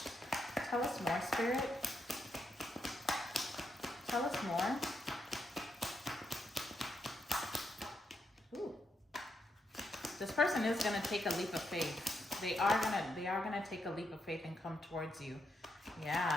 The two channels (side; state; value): both; normal; correlation 0.80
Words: Tell us more, Spirit. Tell us more. Ooh. This person is going to take a leap of faith. They are gonna take a leap of faith and come towards you.